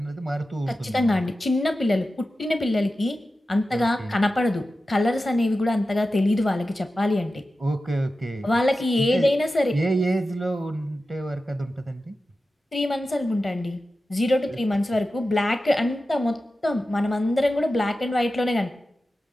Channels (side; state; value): both; normal; correlation 0.93